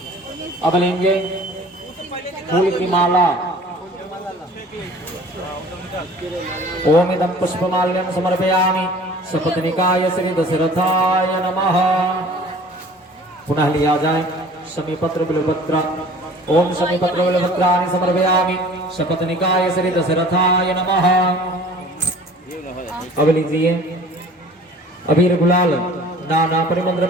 अब लेंगे फूल की माला। ओम इदं पुष्पमाल्यं समर्पयामि सपत्निकाय श्री दशरथाय नमः। पुनः लिया जाए शमीपत्र बिल्वपत्र। ओम शमीपत्र बिल्वपत्राणि समर्पयामि सपत्निकाय श्री दशरथाय नमः। अब लीजिए अबीर गुलाल नाना परिमल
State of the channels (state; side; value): normal; both; correlation 0.47